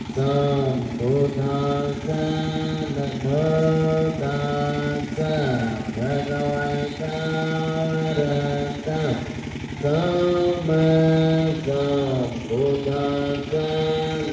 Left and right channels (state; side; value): identical; both; correlation 1.00